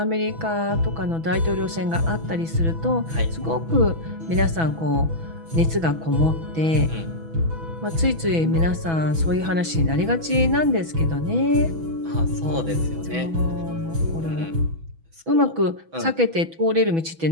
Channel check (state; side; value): late; left; 6.1 ms